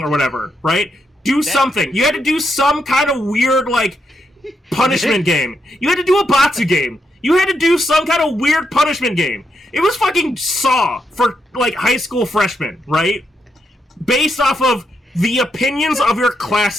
or whatever, right? Do something. You had to do some kind of weird, like, punishment game. You had to do a Batsu game. You had to do some kind of weird punishment game. It was fucking Saw for, like, high school freshmen, right? Based off of the opinions of your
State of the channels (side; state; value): both; normal; correlation 0.81